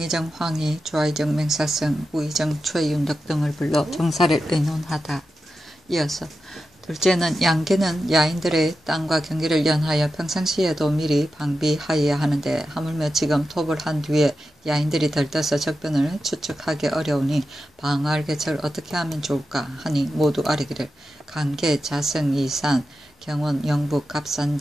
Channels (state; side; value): normal; both; correlation 0.91